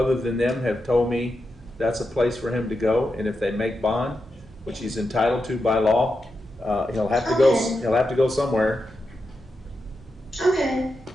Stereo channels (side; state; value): both; normal; correlation 0.88